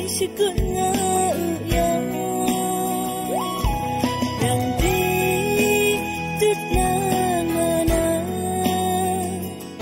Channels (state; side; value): identical; both; correlation 1.00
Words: sẽ cơn ngã gió rằng đi tức là ngà na